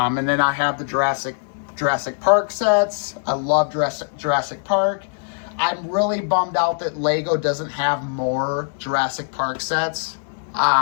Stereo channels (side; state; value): right; silent; digital silence